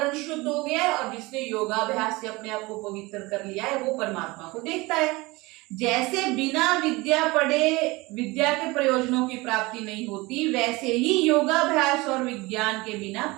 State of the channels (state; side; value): quieter; left; 22.7 dB